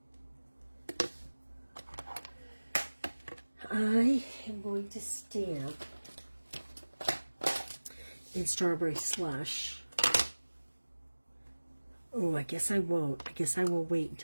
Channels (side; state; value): both; inverted; correlation -1.00